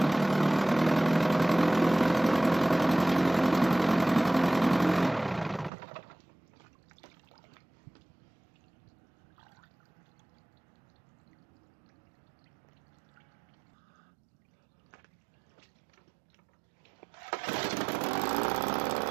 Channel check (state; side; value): drops out; left; at 5.7 s